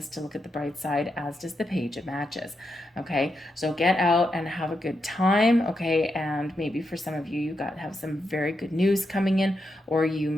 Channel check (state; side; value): normal; both; correlation 0.85